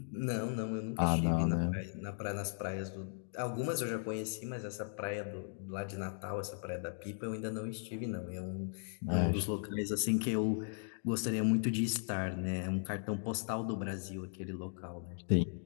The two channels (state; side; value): silent; right; digital silence